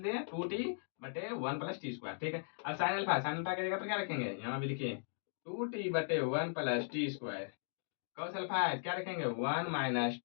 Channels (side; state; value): right; silent; digital silence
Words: 2t बटे 1 प्लस टी स्क्वायर। ठीक है, अब साइन अल्फा की जगह पर क्या रखेंगे, यहाँ भी लिखिए 2t बटे 1 plus t square, cos alpha क्या रखेंगे 1 माइनस